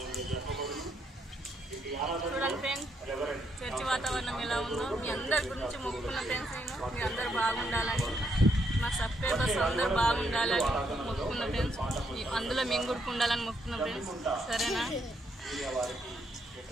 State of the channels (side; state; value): both; normal; correlation 0.75